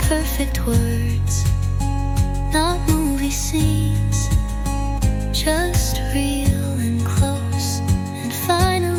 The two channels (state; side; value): identical; both; correlation 1.00